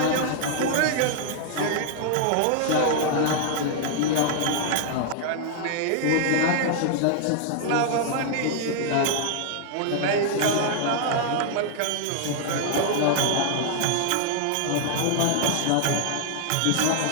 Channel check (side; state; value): both; different; correlation -0.01